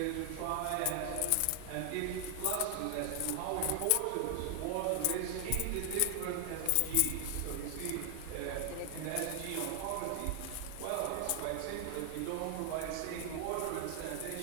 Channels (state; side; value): different; both; correlation 0.00